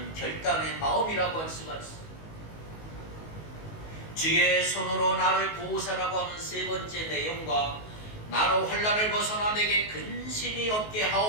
결단의 마음이라고 할 수가 있습니다. 주의 손으로 나를 보호사라고 하는 세 번째 내용과 나로 환난을 벗어나 내게 근심이 없게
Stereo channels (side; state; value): right; late; 19 ms